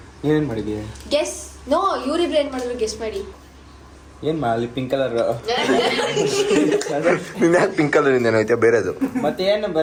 ಏನೇನ್ ಮಾಡಿದ್ಯಾ? Guess. No, ಇವ್ರಿಬ್ರು ಏನ್ ಮಾಡಿದ್ರು ಗೆಸ್ ಮಾಡಿ. ಏನ್ ಮಾಡಿ? ಪಿಂಕ್ ಕಲರ್ ನಿನ್ನ ಯಾಕೆ ಪಿಂಕ್ ಕಲರ್ ಇಂದ ಏನೈತೆ ಬೇರೆದು? ಮತ್ತೆ ಏನ್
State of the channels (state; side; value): identical; both; correlation 1.00